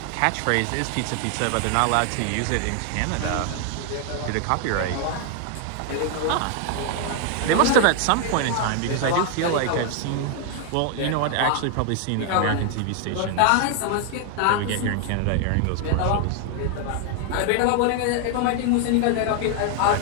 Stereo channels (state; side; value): different; both; correlation 0.00